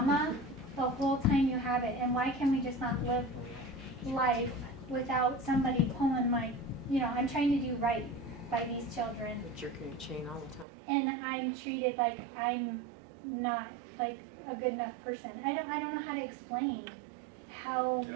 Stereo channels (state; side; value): drops out; left; at 10.7 s